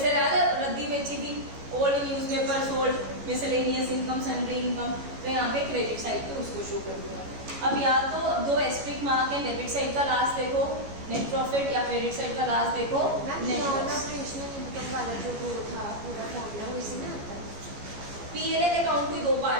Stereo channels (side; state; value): left; late; 14 ms